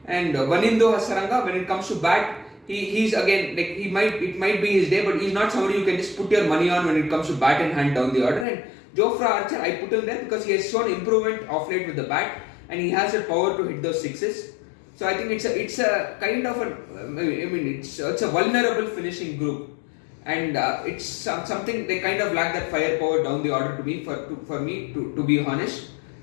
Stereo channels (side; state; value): right; drops out; at 8.5 s